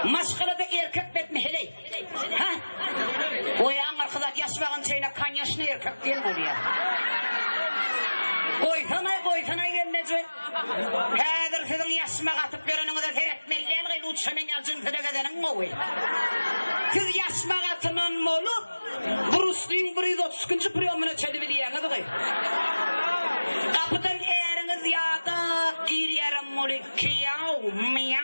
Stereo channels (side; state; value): both; inverted; correlation -1.00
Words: Maşkılıda erkek betmi heley. Ha? O yan arkadaş yaşmağın şeyine kan yaşını erkek değil mi oraya? Koysana gelnece. Kadir sizin yaşmaq atıp görününüzü seyretmekle elgin uçuşunun yalcın size gezenin o. Siz yaşmaq atının olup Bruce Lee 130. priyomuna çelimi diyeniz ki. Kapıdan eriniz yadık girerim mulikki yav